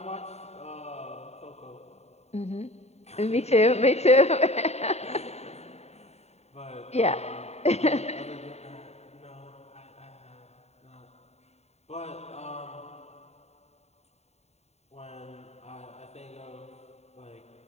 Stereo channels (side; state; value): right; late; 0.31 ms